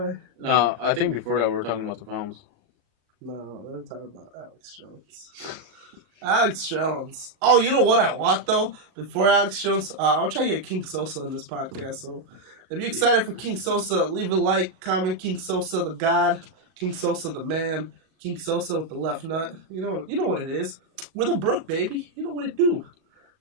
No, I think before that we were talking about the films. No, we're talking about Alex Jones. Alex Jones. Oh, you know what I want though? Before Alex Jones, I'll try to get King Sosa in this podcast. So, if you're excited for King Sosa, leave a like, comment. King Sosa, the God. King Sosa, the man. King Sosa with the left nut. You know what it is. We're the Brook, baby. You know what it do.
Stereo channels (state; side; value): late; left; 38 ms